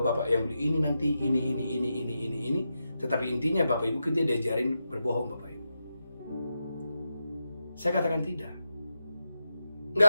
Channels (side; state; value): both; inverted; correlation -0.88